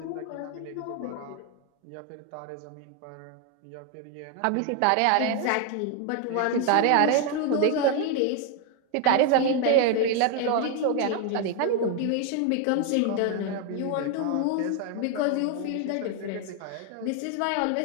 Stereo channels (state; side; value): different; both; correlation 0.01